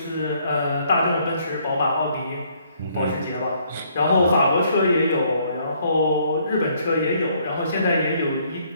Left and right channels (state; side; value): inverted; both; correlation -0.66